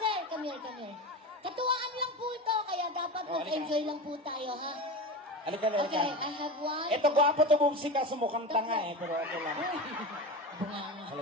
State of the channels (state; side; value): normal; both; correlation 0.26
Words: come here. Katuwaan lang po ito, kaya dapat Oh, mag-enjoy lang po tayo, ha? Halika na. Okay, I have one. Ito, gwapo to bumsi ka, sumukhang tanga eh, pero okay lang. Bunganga.